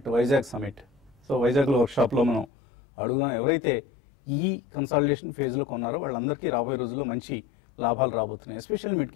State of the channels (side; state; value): right; drops out; at 2.5 s